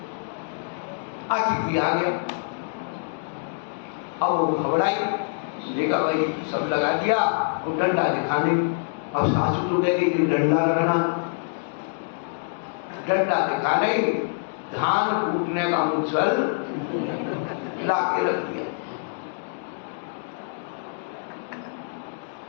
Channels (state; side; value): silent; right; digital silence